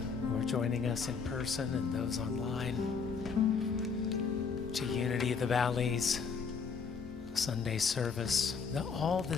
are joining us in person and those online to Unity of the Valleys Sunday service. All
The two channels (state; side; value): quieter; right; 5.6 dB